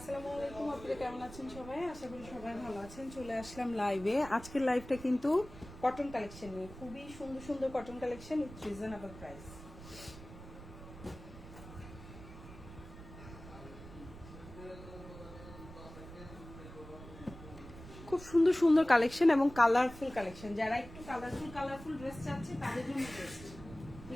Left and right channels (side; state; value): right; noise; rumble, 15 dB below the sound